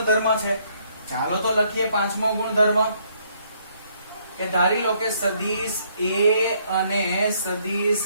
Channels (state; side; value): inverted; both; correlation -0.68